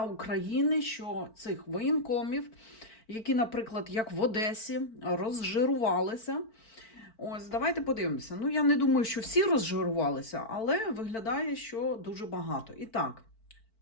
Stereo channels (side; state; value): right; late; 4.5 ms